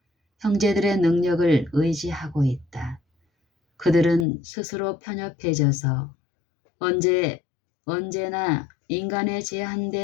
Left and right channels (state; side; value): drops out; right; at 4.2 s